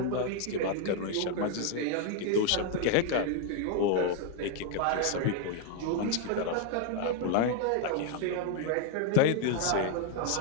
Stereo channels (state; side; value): different; both; correlation 0.00